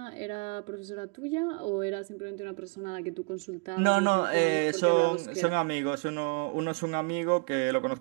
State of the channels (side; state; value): left; quieter; 32.8 dB